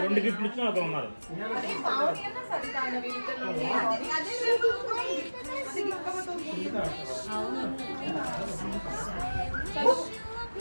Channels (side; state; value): both; inverted; correlation -1.00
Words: 2 గిఫ్ట్లు ఇచ్చిన ఒకరు ఉన్నారు.